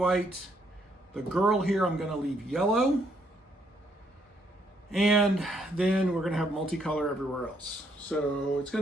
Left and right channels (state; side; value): normal; both; correlation 0.72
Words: The girl here I'm gonna leave yellow. And then we're gonna have multicolor everywhere else. So it's